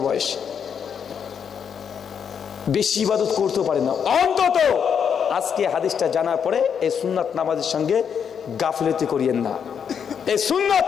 বয়স, বেশি ইবাদত করতে পারে না, অন্তত আজকে হাদিসটা জানার পরে এই সুন্নাত নামাজের সঙ্গে গাফিলতি করিয়েন না। এই সুন্নাত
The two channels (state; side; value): quieter; right; 7.4 dB